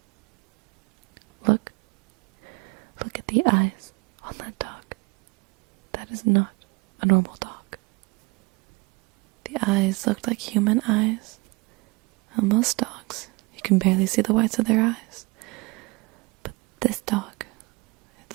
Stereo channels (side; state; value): left; quieter; 26.2 dB